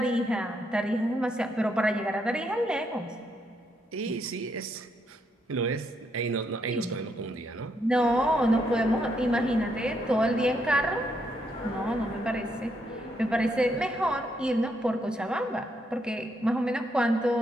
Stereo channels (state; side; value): normal; both; correlation 0.76